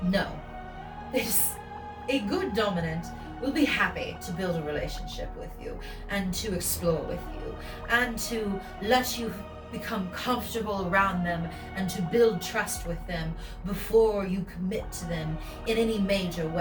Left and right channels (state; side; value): identical; both; correlation 1.00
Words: No. A good dominant will be happy to build a relationship with you and to explore with you and to let you become comfortable around them and to build trust with them before you commit to them in any major